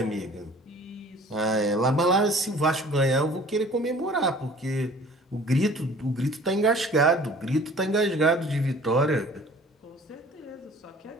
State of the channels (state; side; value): normal; both; correlation 0.49